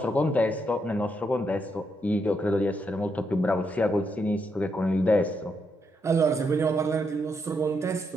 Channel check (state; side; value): normal; both; correlation 0.79